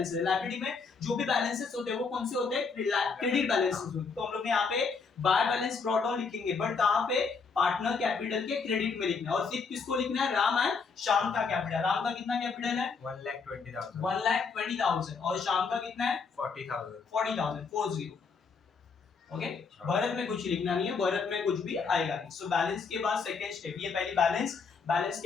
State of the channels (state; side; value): quieter; right; 5.1 dB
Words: है। लायबिलिटी में जो भी बैलेंसेस होते हैं वो कौन से होते हैं, क्रेडिट बैलेंसेस होते हैं। तो हम लोग यहाँ पे बाय बैलेंस ब्रॉट डाउन लिखेंगे, बट कहां पे, पार्टनर कैपिटल के क्रेडिट में लिखना है। और सिर्फ किसको लिखना है, राम एंड श्याम का कैपिटल। राम का कितना कैपिटल है 1,20,000 और श्याम का कितना है 40,000। ओके भरत में कुछ लिखना नहीं है, भरत में कुछ भी आएगा नहीं। सो बैलेंस के बाद सेकंड स्टेप, ये पहली बैलेंस। बैलेंस